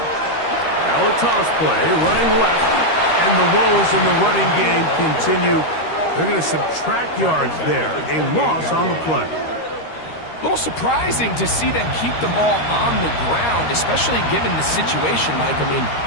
Now a toss play, running left, and the woes in the running game continue. They're going to subtract yards there. A loss on the play. A little surprising to see them keep the ball on the ground, especially given the situation, Mike. I mean,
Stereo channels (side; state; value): right; late; 13 ms